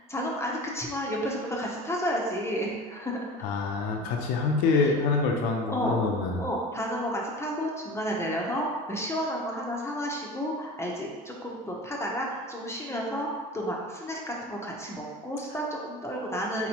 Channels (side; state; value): both; normal; correlation 0.36